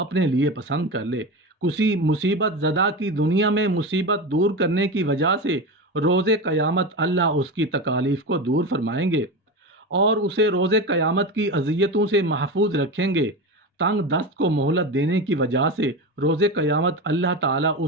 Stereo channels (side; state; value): both; normal; correlation 0.22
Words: لیے پسند کر لے۔ کسی مصیبت زدہ کی دنیا میں مصیبت دور کرنے کی وجہ سے روز قیامت اللہ اس کی تکالیف کو دور فرمائیں گے اور اسے روز قیامت کی اذیتوں سے محفوظ رکھیں گے۔ تنگ دست کو مہلت دینے کی وجہ سے روز قیامت اللہ تعالیٰ